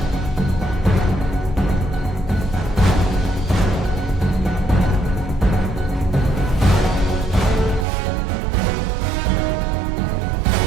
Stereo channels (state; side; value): drops out; left; at 7.9 s